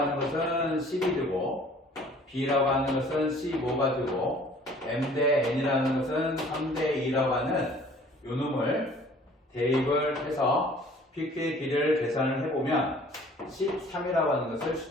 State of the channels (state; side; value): normal; both; correlation 0.52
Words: 것은 10이 되고 B라고 하는 것은 15가 되고 M 대 N이라는 것은 3대 2라고 하는 요놈을 대입을 해서 PQ의 길이를 계산을 해보면 13이라고 하는 것을